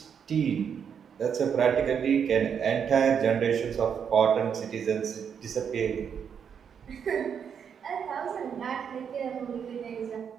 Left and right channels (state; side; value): quieter; left; 7.5 dB